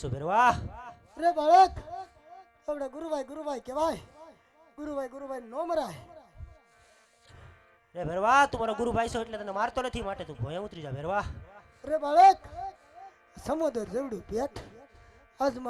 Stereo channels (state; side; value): identical; both; correlation 1.00